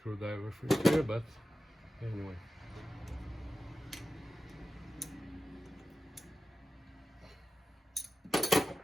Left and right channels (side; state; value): both; normal; correlation 0.92